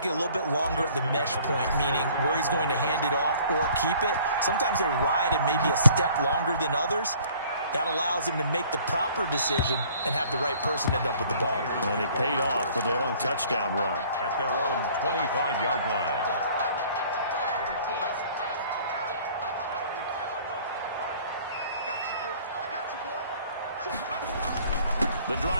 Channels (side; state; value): both; inverted; correlation -0.54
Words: a little bit longer at the mesh point, meaning where he's going to hand it off or keep it. Sometimes they ride it maybe a step longer than others. That allows him to make the proper decision and have the right person end up with the ball. And it paid off with a long touchdown run. At their own 25-yard line. The